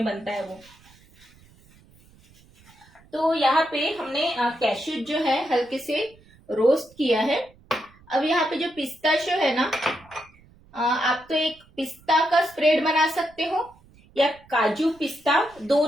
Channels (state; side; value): noise; right; rumble, 28 dB below the sound